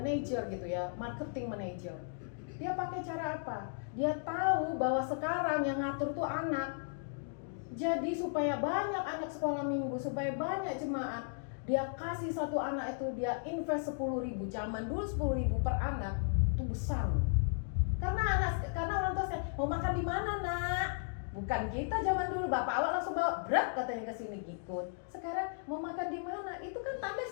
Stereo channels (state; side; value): silent; right; digital silence